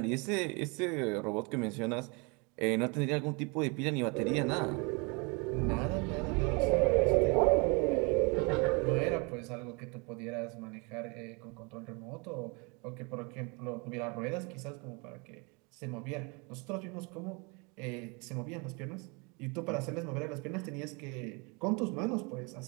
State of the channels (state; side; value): quieter; left; 30.9 dB